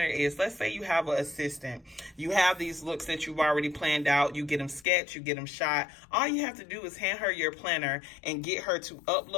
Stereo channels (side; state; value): right; drops out; at 4.9 s